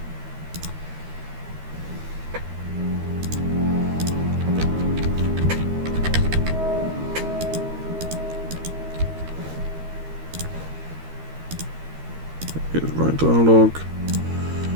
here's right dialogue.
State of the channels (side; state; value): left; late; 13 ms